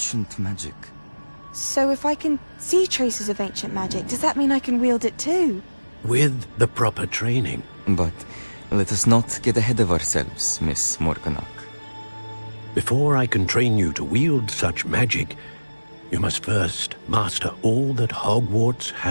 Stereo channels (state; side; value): inverted; both; correlation -1.00